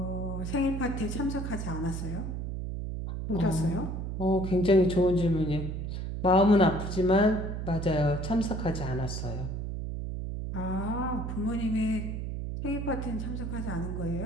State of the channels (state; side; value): noise; right; hum, 4 dB below the sound